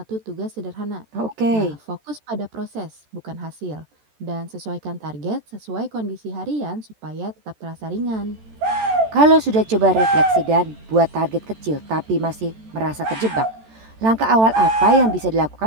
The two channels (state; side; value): late; left; 14 ms